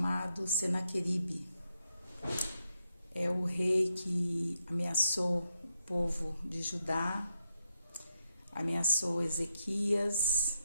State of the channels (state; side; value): inverted; both; correlation -0.83